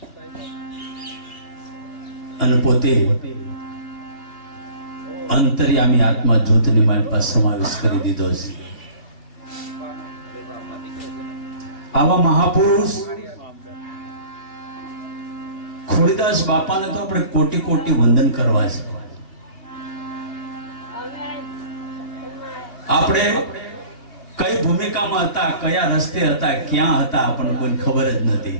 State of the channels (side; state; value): right; late; 2.6 ms